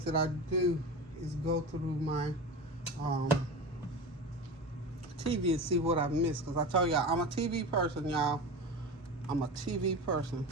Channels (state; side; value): normal; both; correlation 0.28